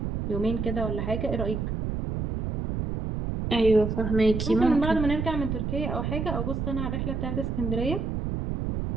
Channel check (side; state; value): right; noise; rumble, 2 dB below the sound